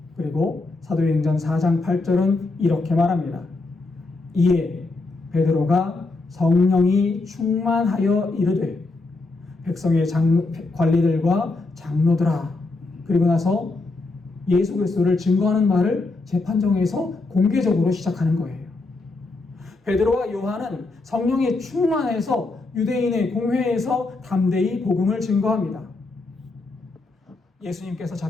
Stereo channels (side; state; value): right; quieter; 3.4 dB